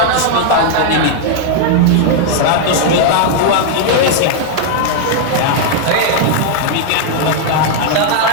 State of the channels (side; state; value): both; different; correlation 0.00